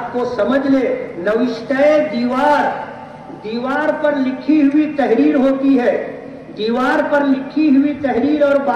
کو سمجھ لے، نوشتہ دیوار، دیوار پر لکھی ہوئی تحریر ہوتی ہے، دیوار پر لکھی ہوئی تحریر اور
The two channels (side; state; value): both; identical; correlation 1.00